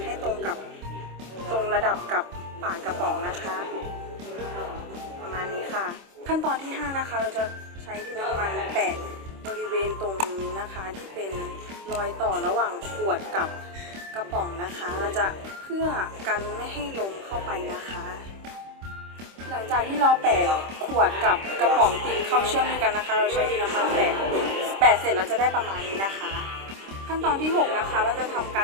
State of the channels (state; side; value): late; left; 26 ms